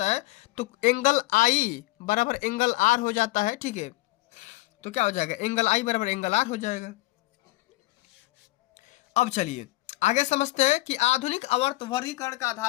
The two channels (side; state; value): right; quieter; 19.7 dB